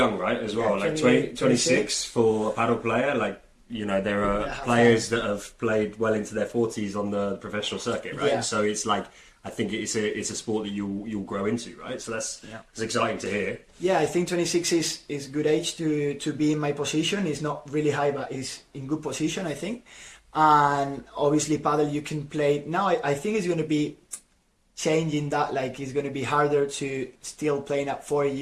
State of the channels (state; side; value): identical; both; correlation 1.00